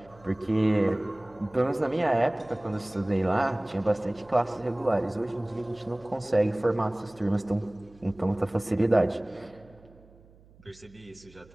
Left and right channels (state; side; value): noise; right; hum, 26 dB below the sound